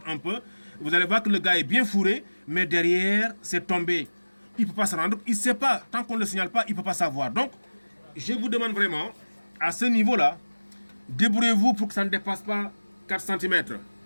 un peu. Vous allez voir que le gars est bien fourré, mais derrière, c'est tombé. Il ne peut pas se rendre, il ne sait pas. Tant qu'on ne le signale pas, il ne peut pas savoir. Donc, je vous demande vraiment, à ce niveau-là, débrouillez-vous pour que ça ne dépasse pas 4 cm.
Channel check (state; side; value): inverted; both; correlation -1.00